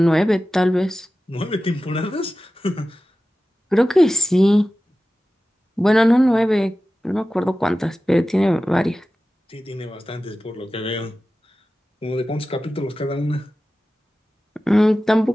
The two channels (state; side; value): normal; both; correlation 0.95